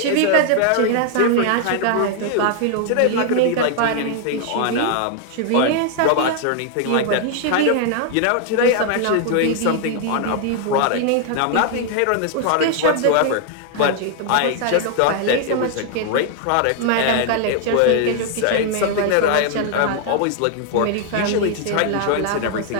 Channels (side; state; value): both; different; correlation 0.00